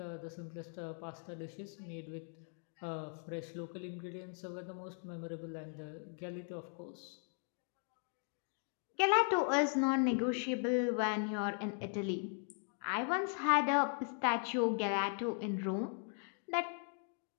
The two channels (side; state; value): right; silent; 52 dB below the other